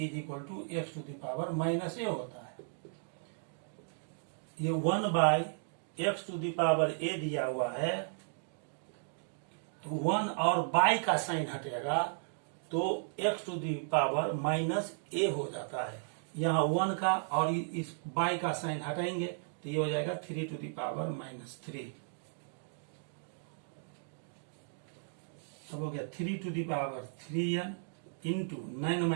equal to x⁻⁻a होता है। ये 1/x⁻a दिया हुआ है, तो 1 और बाई का साइन हटेगा तो x⁻⁻a हो जाता है। यहाँ 1 का और इस बाई का साइन हटाएंगे तो ये हो जाएगा 3^-3। अब हो गया 3^3n इंटू 9 -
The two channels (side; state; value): left; silent; digital silence